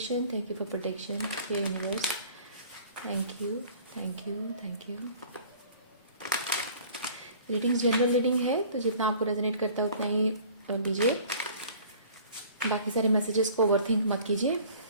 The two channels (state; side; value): inverted; both; correlation -0.50